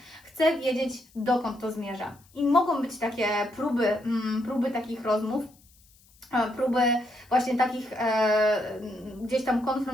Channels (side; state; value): left; noise; hiss, 29 dB below the sound